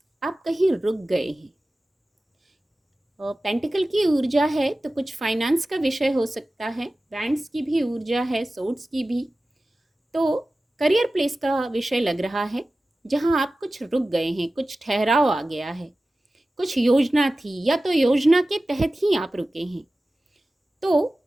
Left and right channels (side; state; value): both; normal; correlation 0.96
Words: आप कहीं रुक गए हैं। और पेंटिकल की ऊर्जा है, तो कुछ फाइनेंस का विषय हो सकता है। वैंड्स की भी ऊर्जा है, सोर्ड्स की भी। तो करियर प्लेस का विषय लग रहा है, जहां आप कुछ रुक गए हैं, कुछ ठहराव आ गया है, कुछ योजना थी या तो योजना के तहत ही आप रुके हैं, तो